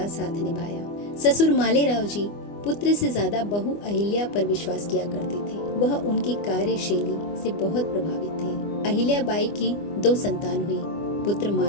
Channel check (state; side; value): late; right; 24 ms